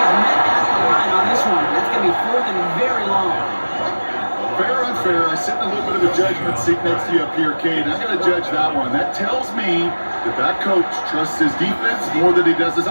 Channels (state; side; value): inverted; both; correlation -1.00